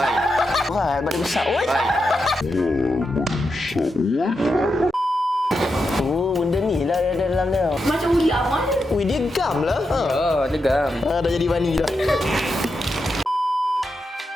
Berat, badan besar. Oi. Oh, benda ni lah ada dalam dia. Macam ular mana? Ui, dia gam lah. Oh, legam. Dah jadi bani dah.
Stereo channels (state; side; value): normal; both; correlation 0.86